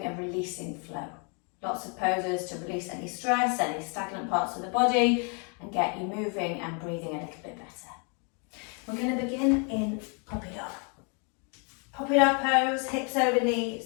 a releasing flow. Lots of poses to release any stress, any stagnant parts of the body and get you moving and breathing a little bit better. We're going to begin in puppy dog. Puppy dog pose, hips over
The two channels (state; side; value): quieter; right; 36.8 dB